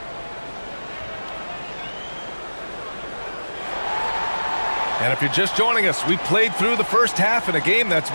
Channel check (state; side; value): inverted; both; correlation -1.00